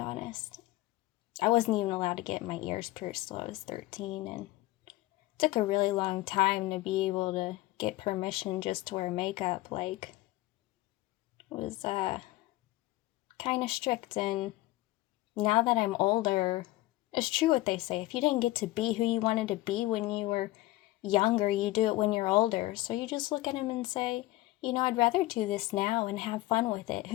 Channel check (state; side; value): quieter; right; 17.9 dB